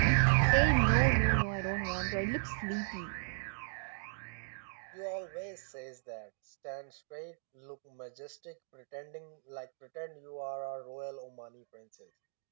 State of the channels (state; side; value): silent; left; digital silence